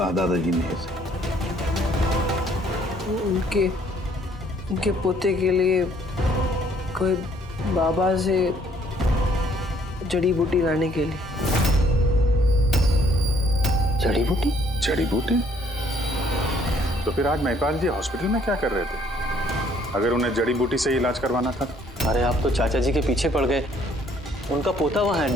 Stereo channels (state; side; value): normal; both; correlation 0.63